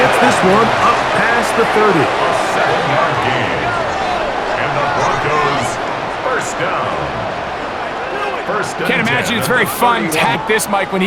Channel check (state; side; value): identical; both; correlation 1.00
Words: this one up past the 30. A 7-yard gain. And the Broncos first down. Can't imagine it's very fun to hack this, Mike, when